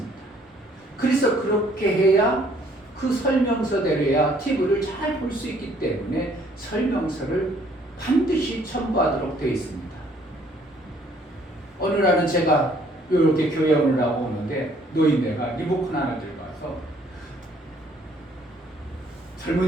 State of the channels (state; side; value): normal; both; correlation 0.62